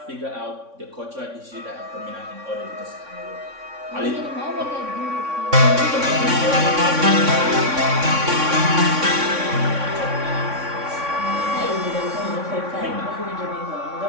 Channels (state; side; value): late; left; 3.6 ms